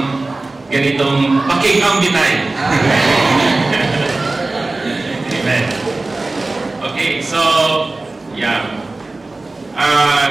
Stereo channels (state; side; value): quieter; left; 3.2 dB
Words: ganitong pakikambitay. Amen. Okay, so yeah.